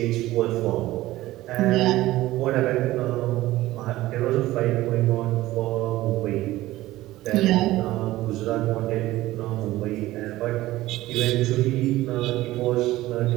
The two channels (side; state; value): left; quieter; 16.7 dB